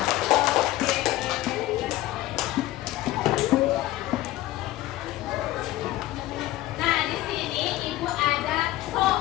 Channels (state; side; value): quieter; right; 15.8 dB